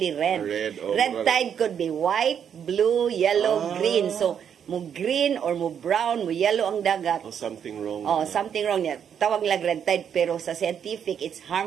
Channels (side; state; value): left; quieter; 8.2 dB